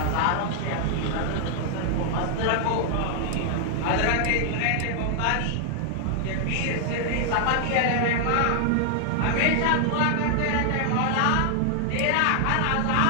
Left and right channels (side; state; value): both; different; correlation 0.00